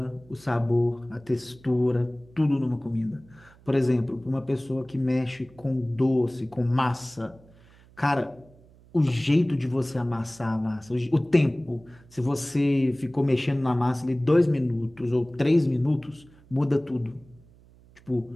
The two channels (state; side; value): noise; right; hum, 26 dB below the sound